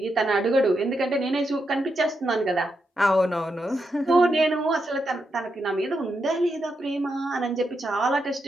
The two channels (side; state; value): both; normal; correlation 0.84